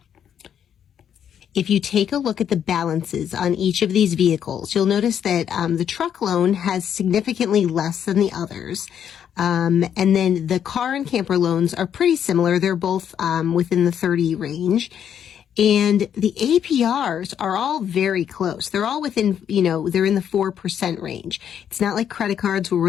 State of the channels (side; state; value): right; quieter; 9.0 dB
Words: If you take a look at the balances on each of these vehicles, you'll notice that the truck loan has significantly less than the others. And then the car and camper loans are pretty similar. They're both within the 30 range. And the APRs are all very close. They're all within, they're in the 4% range. It's not like credit cards where we're